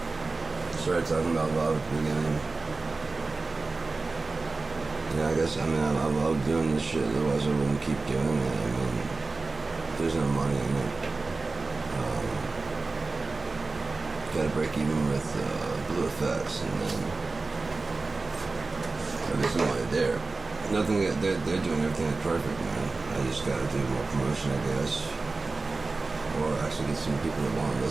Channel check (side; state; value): left; quieter; 3.7 dB